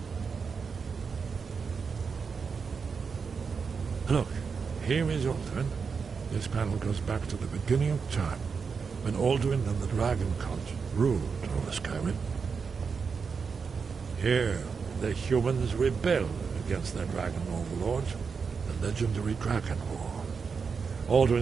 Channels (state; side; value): quieter; left; 5.5 dB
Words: Look, here is Alduin. This panel goes back to the beginning of time, when Alduin and the Dragon Cult ruled over Skyrim. Here, the humans rebelled against their dragon overlords, the legendary Dragon War.